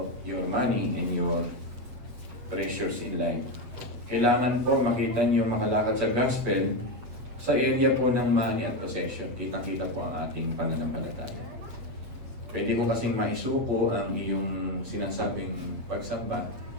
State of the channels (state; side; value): late; left; 8.2 ms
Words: your money and your treasures in life. Kailangan po makita niyo makalakad sa gospel sa area po ng money at possession. Kitang-kita po ang ating pananampalataya. Pwede ko kasing maisuko ang iyong sinasabing pagsamba,